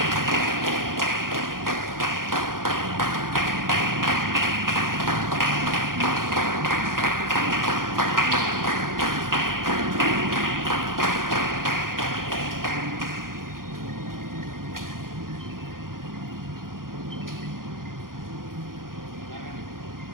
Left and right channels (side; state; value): left; late; 0.91 ms